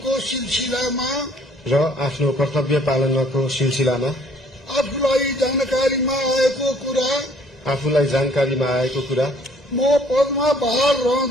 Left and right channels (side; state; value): both; normal; correlation 0.59